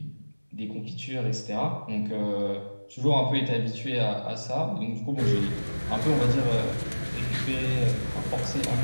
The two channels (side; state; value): both; inverted; correlation -1.00